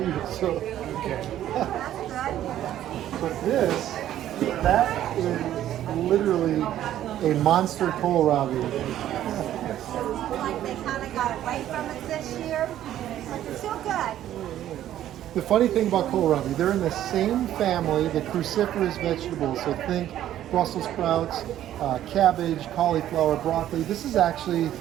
So, Okay. but that is literally a monster kohlrabi. Like they kind of got away from it this year, but they're still good. The funny thing about kohlrabi, they're in the same family, the cruciferous vegetables. So think Brussels sprouts, cabbage, cauliflower, broccoli. This is actually,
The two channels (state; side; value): quieter; left; 12.1 dB